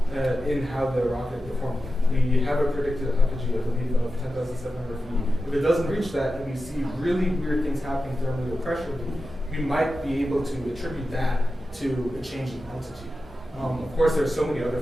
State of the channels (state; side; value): normal; both; correlation 0.92